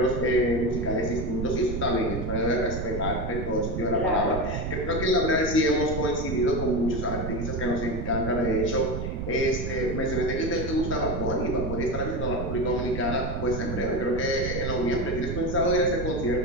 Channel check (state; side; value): noise; right; rumble, 4 dB below the sound